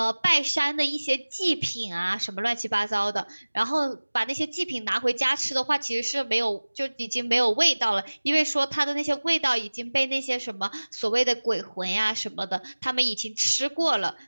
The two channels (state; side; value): inverted; both; correlation -1.00